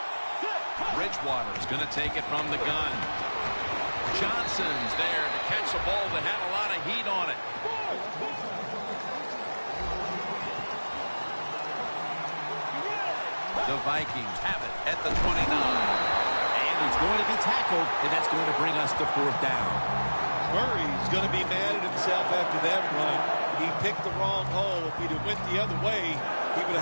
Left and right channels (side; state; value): both; inverted; correlation -1.00